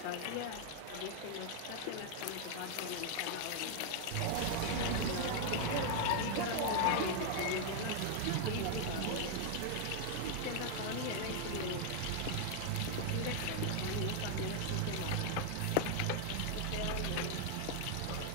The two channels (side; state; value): both; different; correlation 0.00